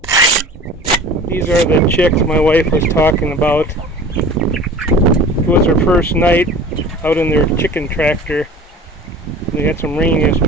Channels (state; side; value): normal; both; correlation 0.41